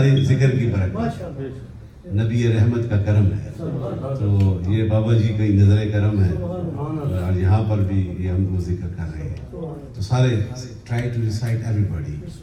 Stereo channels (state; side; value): identical; both; correlation 1.00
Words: ذکر کی برکت نبی رحمت کا کرم ہے، تو یہ بابا جی کا نظر کرم ہے، اور یہاں پر بھی یہ ہم کو ذکر کر رہے ہیں۔ تو سارے try to recite everybody.